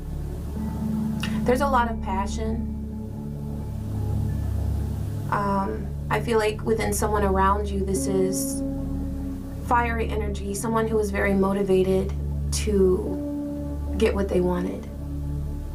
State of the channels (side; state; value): both; identical; correlation 1.00